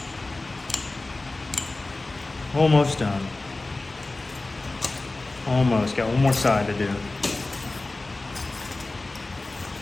Almost done. Almost. Got one more side to do.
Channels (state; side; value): quieter; right; 3.1 dB